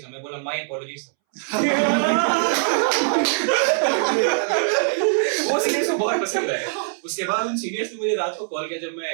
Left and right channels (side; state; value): left; silent; 64 dB below the other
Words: था, मैं बोला माय अपॉलॉजीज सर। वो सीनियर्स को बहुत पसंद आया। उसके बाद उन सीनियर्स ने मुझे रात को कॉल किया, जब मैं